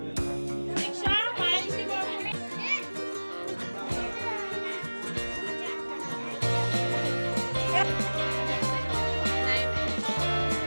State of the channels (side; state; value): both; inverted; correlation -1.00